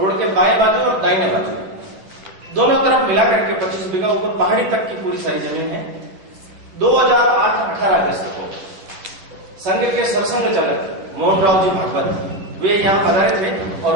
के बाएं बाजू और दाहिने बाजू दोनों तरफ मिला करके 25 बीघा, ऊपर पहाड़ी तक की पूरी सारी जमीन है। 2008-18 अगस्त को संघ के सरसंघ चालक मोहन राव जी भागवत वे यहाँ पधारे थे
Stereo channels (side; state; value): left; late; 11 ms